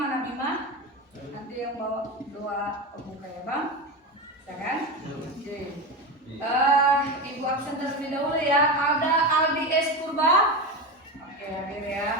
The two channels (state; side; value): normal; both; correlation 0.20